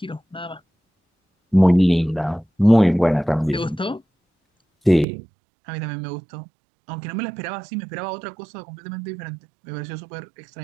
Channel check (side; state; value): left; drops out; at 5.1 s